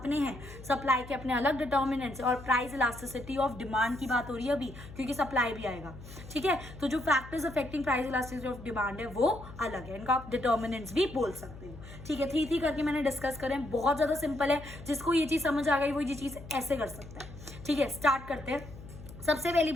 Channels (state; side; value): noise; left; hum, 15 dB below the sound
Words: हैं, सप्लाई के अपने अलग डिटर्मिनेंट्स, और प्राइस इलास्टिसिटी ऑफ डिमांड की बात हो रही है अभी क्योंकि सप्लाई भी आएगा, ठीक है। तो जो factors affecting price elasticity of demand है वो अलग है, इनका आप डिटर्मिनेंट्स भी बोल सकते हो, ठीक है। 3 करके मैंने डिस्कस करें, बहुत ज्यादा सिंपल है, जिसको ये चीज समझ आ गई वो ये चीज ऐसे कर सकता है, ठीक है। स्टार्ट करते हैं। सबसे पहली